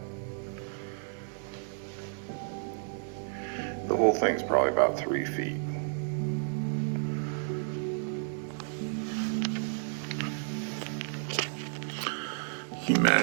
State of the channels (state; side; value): silent; left; 57 dB below the other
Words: The whole thing's probably about 3 feet. Can you